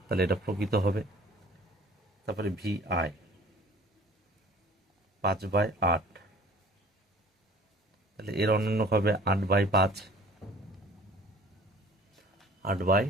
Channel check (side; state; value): both; normal; correlation 0.49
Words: তাহলে এটা প্রকৃত হবে। তারপরে VI 5/8, তাহলে এর অনন্যক হবে 8/5,